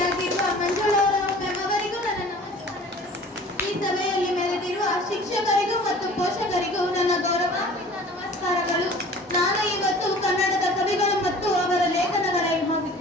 ಮಂಜುಳಾ ಮ್ಯಾಮ್ ಅವರಿಗೂ ನನ್ನ ನಮಸ್ಕಾರಗಳು. ಈ ಸಭೆಯಲ್ಲಿ ಮೆರೆದಿರುವ ಶಿಕ್ಷಕರಿಗೂ ಮತ್ತು ಪೋಷಕರಿಗೂ ನನ್ನ ಗೌರವಾನ್ವಿತ ನಮಸ್ಕಾರಗಳು. ನಾನು ಇವತ್ತು ಕನ್ನಡದ ಕವಿಗಳು ಮತ್ತು ಅವರ ಲೇಖನಗಳ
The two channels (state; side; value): normal; both; correlation 0.46